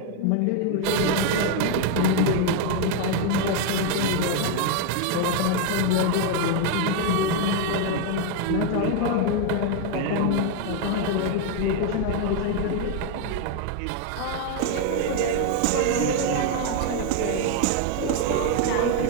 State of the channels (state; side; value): different; both; correlation 0.01